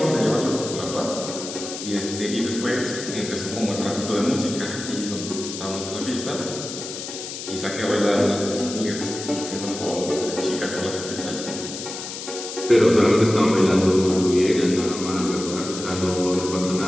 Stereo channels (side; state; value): left; noise; hiss, 8 dB below the sound